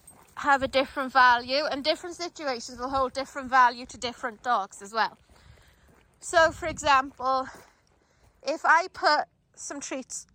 have a different value, and different situations will hold different value to different dogs as well. So for example, if I put some treats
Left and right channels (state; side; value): identical; both; correlation 1.00